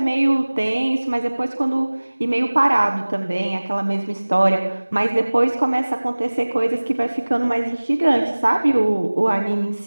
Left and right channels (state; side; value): inverted; both; correlation -1.00